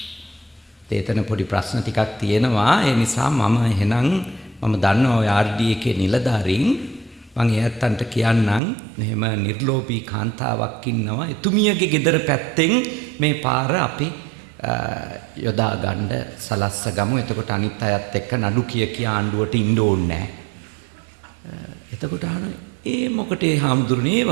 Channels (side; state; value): left; drops out; at 8.6 s